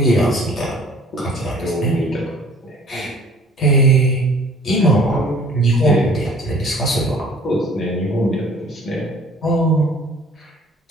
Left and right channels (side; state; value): both; normal; correlation 0.52